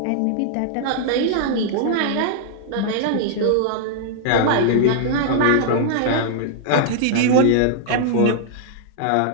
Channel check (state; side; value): different; both; correlation -0.01